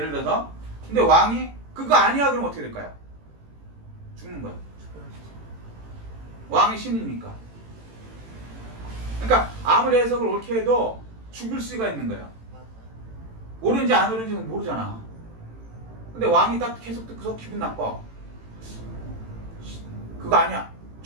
들어서. 근데 왕이 그거 아니야 그러면 어떻게 될까요? 죽는 거예요. 왕이 신이니까. 그러니까 아무리 해석을 옳게 해도 죽을 수가 있는 거예요. 옳은지 안 옳은지는 모르잖아. 근데 왕이 딱 계속 듣고서 기분 나빠. 그거 아니야.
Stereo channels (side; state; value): left; late; 18 ms